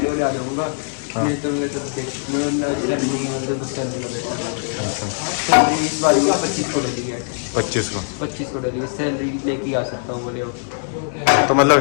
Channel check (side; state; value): right; silent; digital silence